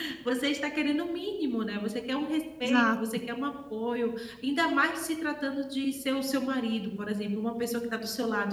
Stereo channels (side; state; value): both; identical; correlation 1.00